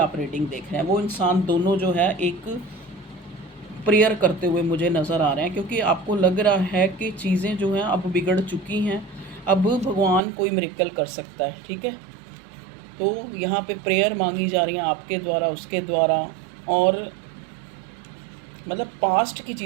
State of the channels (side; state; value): left; drops out; at 10.2 s